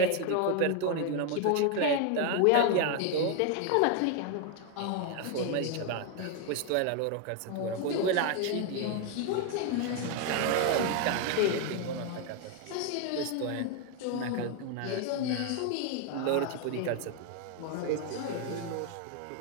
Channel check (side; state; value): both; different; correlation 0.01